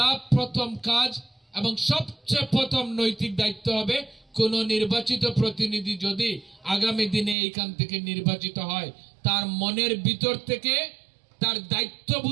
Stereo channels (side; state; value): left; drops out; at 7.4 s